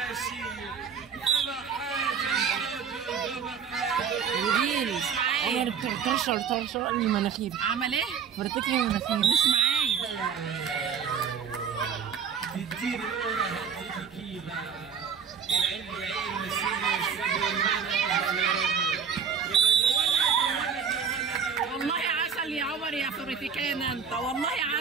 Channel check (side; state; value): left; quieter; 6.9 dB